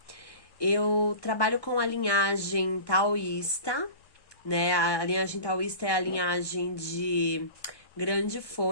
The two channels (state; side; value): late; right; 1.2 ms